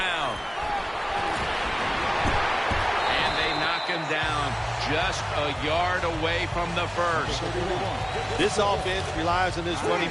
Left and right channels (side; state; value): both; identical; correlation 1.00